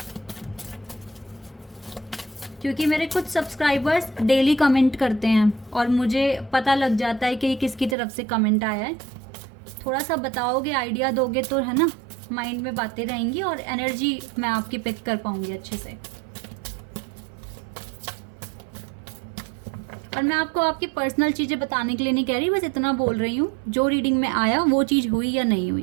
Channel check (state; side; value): drops out; left; at 8.0 s